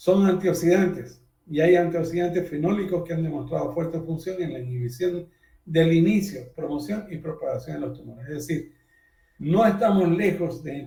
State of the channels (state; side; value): identical; both; correlation 1.00